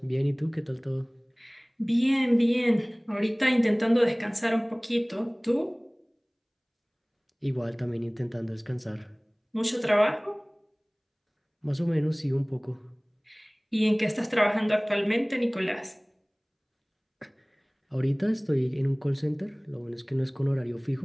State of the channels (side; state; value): both; identical; correlation 1.00